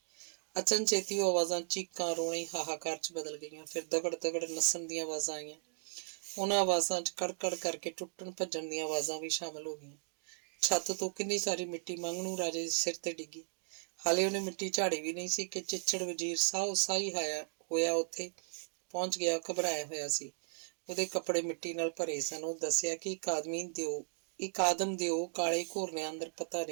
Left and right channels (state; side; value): silent; left; digital silence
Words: ਅਚਨਚੇਤੀ ਉਹ ਆਵਾਜ਼ਾਂ ਚੀਕਾਂ, ਰੋਣੇ, ਹਾਹਾਕਾਰ 'ਚ ਬਦਲ ਗਈਆਂ। ਫਿਰ ਦਗੜ ਦਗੜ ਨੱਸਣ ਦੀਆਂ ਆਵਾਜ਼ਾਂ ਆਈਆਂ। ਉਹਨਾਂ ਆਵਾਜ਼ਾਂ 'ਚ ਕੜਕੜ ਕਰਕੇ ਟੁੱਟਣ ਭੱਜਣ ਦੀਆਂ ਆਵਾਜ਼ਾਂ ਵੀ ਸ਼ਾਮਲ ਹੋ ਗਈਆਂ। ਛੱਤ ਤੋਂ ਕਿੰਨੀ ਸਾਰੀ ਮਿੱਟੀ ਮੰਗਣੂ ਰਾਜੇ ਦੇ ਸਿਰ ਤੇ ਡਿੱਗੀ। ਹਾਲੇ ਉਹਨੇ ਮਿੱਟੀ ਝਾੜੀ ਵੀ ਨਹੀਂ ਸੀ ਕਿ ਚਿੱਚੜ ਵਜ਼ੀਰ ਸਾਹੋ ਸਾਹੀ ਹੋਇਆ ਉੱਥੇ ਪਹੁੰਚ ਗਿਆ। ਘਬਰਾਇਆ ਹੋਇਆ ਸੀ। ਉਹਦੇ ਕੱਪੜੇ ਮਿੱਟੀ ਨਾਲ ਭਰੇ ਸਨ। ਉਹ ਦੱਸਿਆ ਕਿ ਇੱਕ ਆਦਮ ਦਿਓ ਕਾਲੇ ਘੋਰਨਿਆਂ ਅੰਦਰ ਪਤਾ